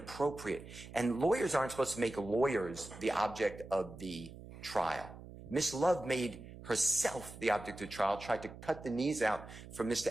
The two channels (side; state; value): right; noise; hum, 15 dB below the sound